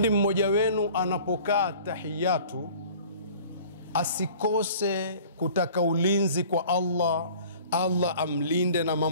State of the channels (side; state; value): both; inverted; correlation -0.48